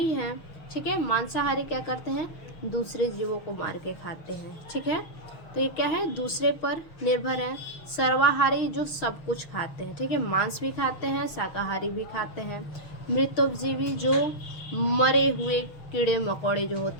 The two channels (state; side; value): late; right; 6.4 ms